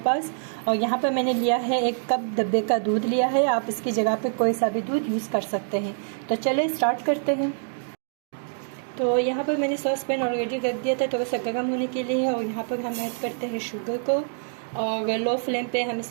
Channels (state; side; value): silent; left; digital silence